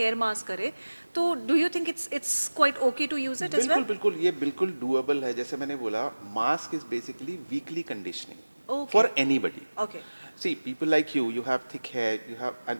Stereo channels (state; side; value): inverted; both; correlation -1.00